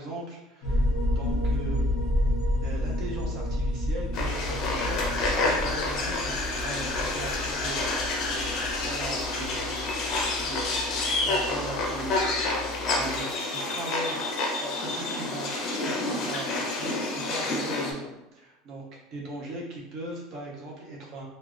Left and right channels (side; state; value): both; normal; correlation 0.46